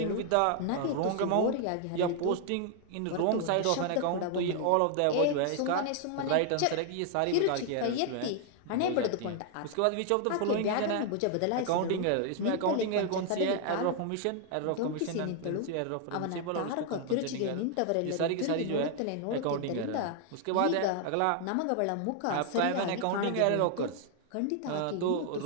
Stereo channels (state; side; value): different; both; correlation 0.00